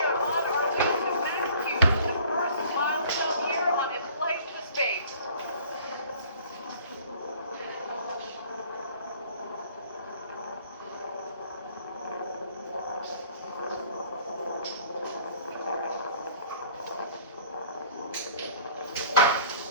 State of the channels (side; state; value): both; inverted; correlation -0.52